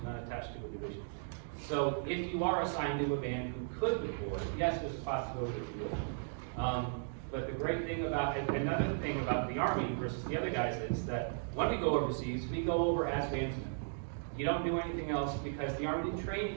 not attached to a division. So if you are assigned to a band who could deploy, yes, there's a possibility that you will. But the great thing about, another thing about the Army versus the other guys is that when we go overseas, we go over as bandsmen. You don't do anything else because the Army didn't train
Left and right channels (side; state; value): left; silent; digital silence